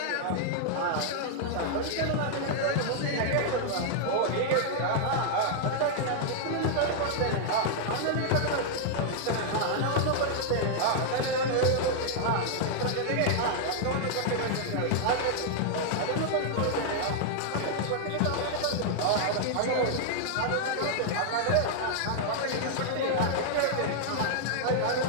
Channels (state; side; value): different; both; correlation -0.01